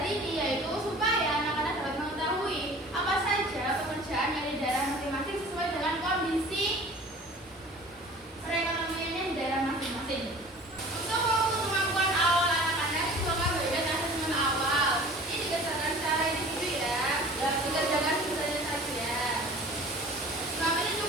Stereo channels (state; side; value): normal; both; correlation 0.44